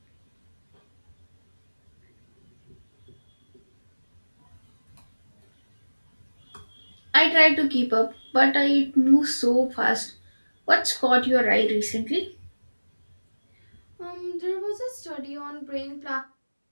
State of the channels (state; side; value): inverted; both; correlation -1.00